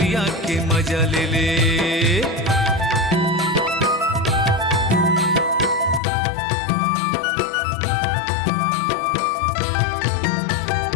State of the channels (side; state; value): right; drops out; at 6.0 s